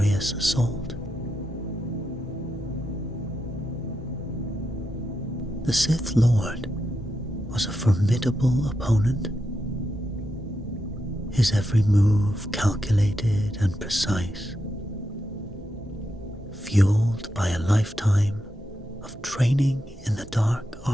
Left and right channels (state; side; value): normal; both; correlation 0.85